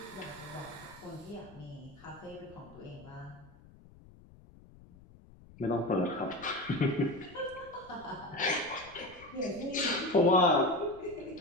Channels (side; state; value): left; noise; rumble, 22 dB below the sound